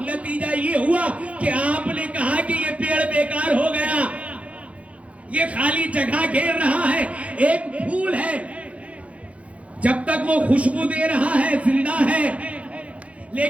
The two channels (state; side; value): late; left; 0.064 ms